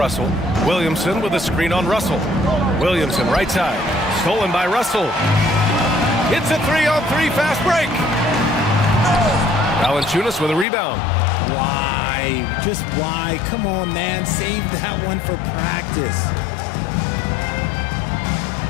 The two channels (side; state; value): right; drops out; at 10.7 s